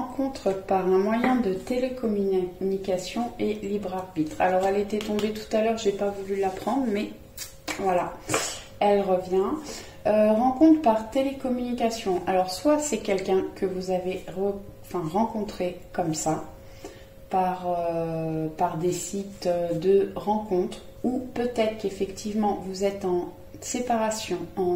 par un moyen de télécommunication et libre arbitre. Alors, elle était tombée tout à l'heure, j'ai pas voulu la prendre, mais voilà, elle revient. Rencontre par télécommunication. Alors, soit c'est quelqu'un que vous avez rencontré comme ça, par des sites de rencontres, ou peut-être qu'effectivement vous êtes en séparation,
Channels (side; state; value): both; identical; correlation 1.00